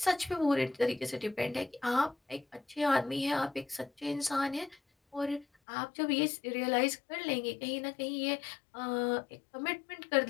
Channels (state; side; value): drops out; right; at 5.5 s